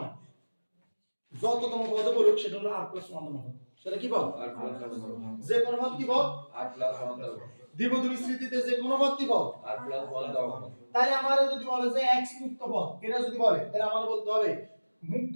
যততম পদ বলুক সেটা হলো r + 1 তম পদ। সেটা কি পদ? r + 1 তম পদ। যে কোন পদ কি পদ? r + 1 তম পদ। দ্বিপদী বিস্তৃতিতে যে কোন পদ কি পদ? r + 1 তম পদ। তাহলে আমারে যদি বলে যে x মুক্ত পদ, এটা যদি বলে তাহলে আমাদের বলতে হবে মুক্ত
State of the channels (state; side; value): inverted; both; correlation -1.00